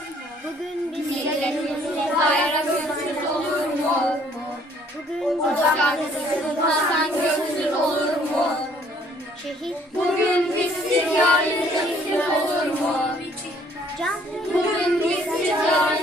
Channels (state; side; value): normal; both; correlation 0.61